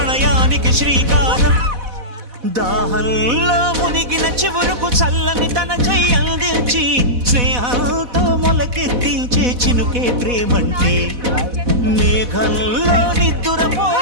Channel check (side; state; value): left; late; 4.1 ms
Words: శ్రీకారం దాహంలో మునిగిన చివురుకు చల్లని తన చెయ్యి అందించి స్నేహంతో మొలకెత్తించే చినుకే ప్రేమంటే మేఘంలో